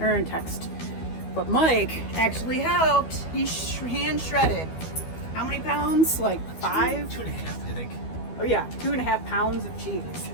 or in text. But Mike actually helped. He hand shredded. How many pounds? Like 5? 2.5, I think. Oh yeah, 2.5 pounds of cheese.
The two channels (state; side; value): late; right; 12 ms